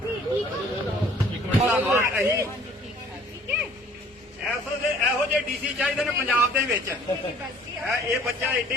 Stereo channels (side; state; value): both; normal; correlation 0.55